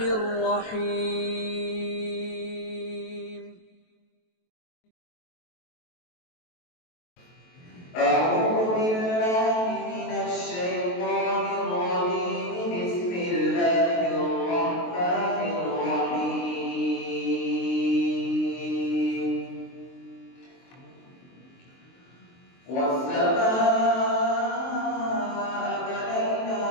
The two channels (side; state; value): right; late; 23 ms